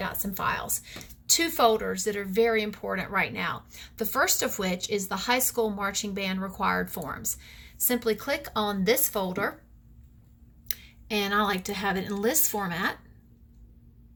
and files. Two folders that are very important right now. The first of which is the high school marching band required forms. Simply click on this folder, and I like to have it in list format.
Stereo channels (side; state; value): both; identical; correlation 1.00